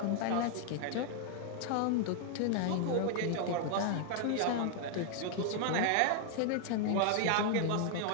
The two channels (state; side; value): different; both; correlation 0.00